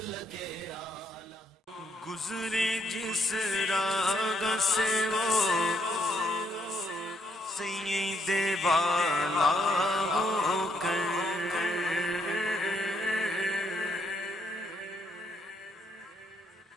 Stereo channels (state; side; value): normal; both; correlation 0.74